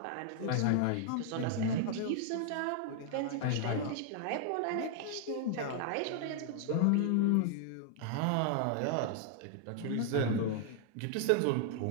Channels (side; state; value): both; different; correlation 0.00